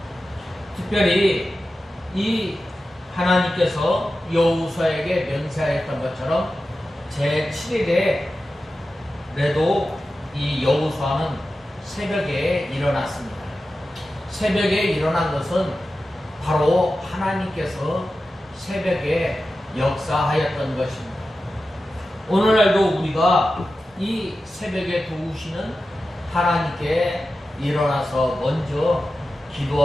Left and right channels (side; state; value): both; normal; correlation 0.93